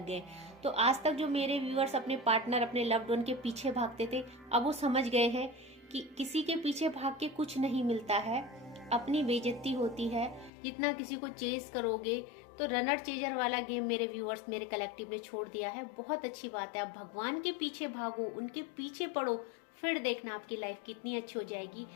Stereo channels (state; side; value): drops out; right; at 10.5 s